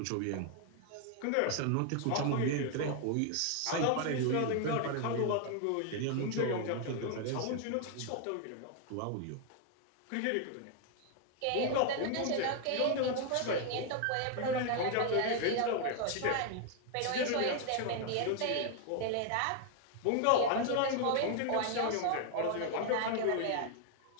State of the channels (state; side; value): different; both; correlation 0.00